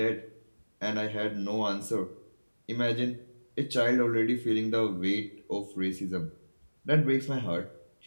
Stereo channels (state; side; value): inverted; both; correlation -1.00